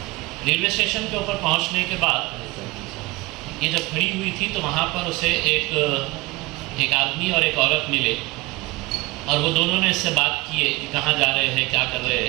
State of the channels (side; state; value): left; quieter; 22.4 dB